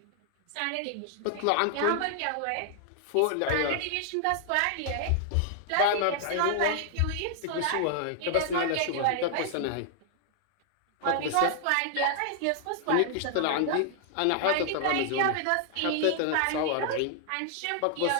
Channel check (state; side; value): different; both; correlation 0.00